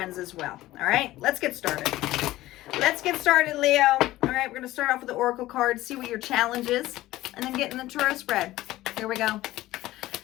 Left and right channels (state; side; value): quieter; right; 16.4 dB